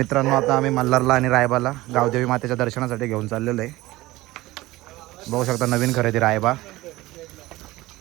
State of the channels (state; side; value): quieter; left; 18.6 dB